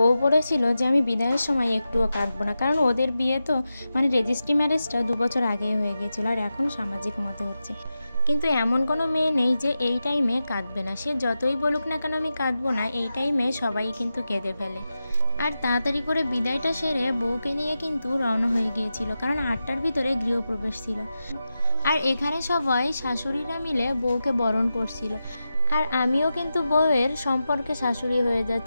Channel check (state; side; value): inverted; both; correlation -0.91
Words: বলেছিল যে আমি বিদায়ের সময় একটুও কাঁদবো না, কারণ ওদের বিয়ে তো মানে রেজিস্ট্রি ম্যারেজটা 2 বছর আগেই হয়ে গিয়েছিল, আর এখন সামাজিক মতে হচ্ছে। কিন্তু এমন কোনো মেয়ে নেই যে এই টাইমে কাঁদবে না, সে যতই বলুক না কেন আমি কাঁদবো না, এই টাইমে সবাই কিন্তু কেঁদে ফেলে। আর তাড়াতাড়ি করে বিদায়টা সেরে বউকে নিয়ে কিন্তু রওনা হয়ে গিয়েছিল, কারণ 8টার ভিতরে গৃহপ্রবেশ ছিল। আর এখানে সবাই শাশুড়িরা মিলে বউকে বরণ করছিল। আর আমিও কিন্তু বউয়ের সম্পর্কে শাশুড়ি হয়ে